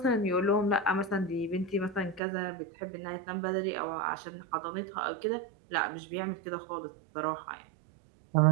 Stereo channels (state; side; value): drops out; left; at 2.2 s